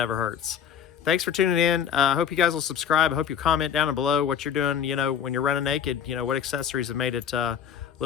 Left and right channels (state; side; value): quieter; right; 8.2 dB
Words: hurts. Thanks for tuning in. I hope you guys will subscribe. I hope you comment down below what you're doing, you know, when you're running naked. You know, what accessories have made it a